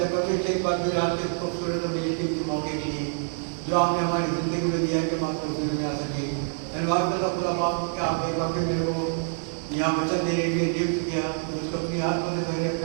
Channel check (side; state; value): left; silent; digital silence